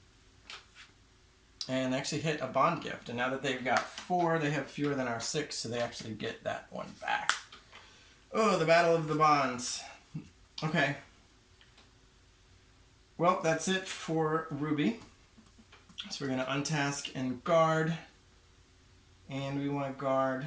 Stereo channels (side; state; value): both; identical; correlation 1.00